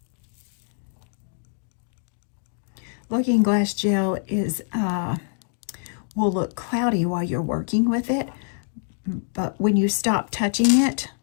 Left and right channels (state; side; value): silent; right; digital silence